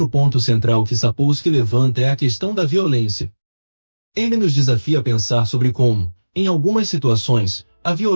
ponto central que Sapolsky levanta é a questão da violência. Ele nos desafia a pensar sobre como, em algumas situações, a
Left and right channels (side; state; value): both; inverted; correlation -1.00